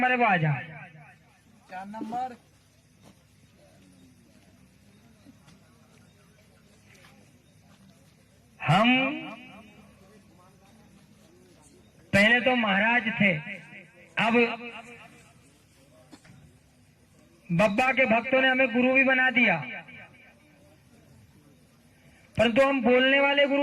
है वो आ जाए। क्या नंबर? हम पहले तो महाराज थे, अब बब्बा के भक्तों ने हमें गुरु भी बना दिया, परंतु हम बोलने वाले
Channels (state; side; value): identical; both; correlation 1.00